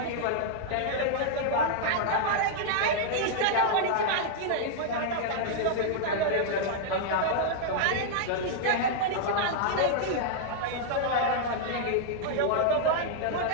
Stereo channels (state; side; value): different; both; correlation -0.01